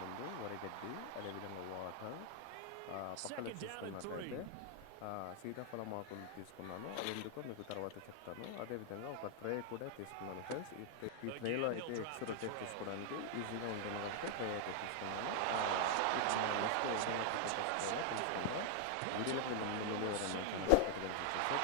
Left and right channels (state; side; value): different; both; correlation 0.00